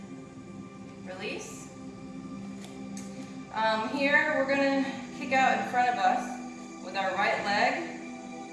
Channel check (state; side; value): identical; both; correlation 1.00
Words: Release. Here we're going to kick out in front of us with our right leg.